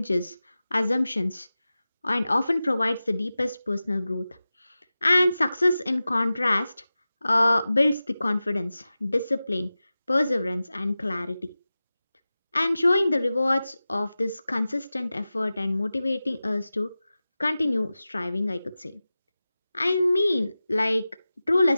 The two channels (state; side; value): inverted; both; correlation -0.95